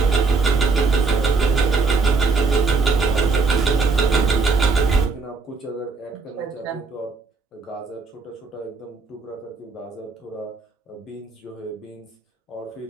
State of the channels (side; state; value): left; quieter; 4.3 dB